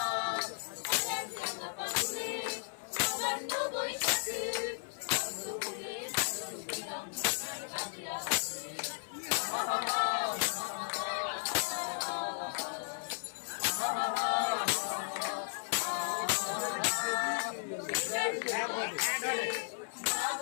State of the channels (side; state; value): right; silent; 54 dB below the other